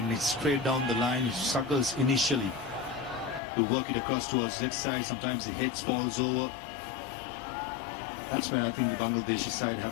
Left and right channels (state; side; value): drops out; right; at 3.4 s